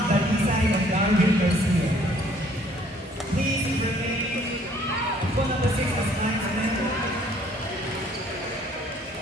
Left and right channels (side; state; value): both; normal; correlation 0.60